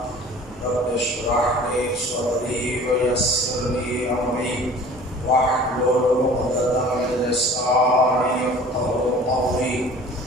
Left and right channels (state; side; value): normal; both; correlation 0.45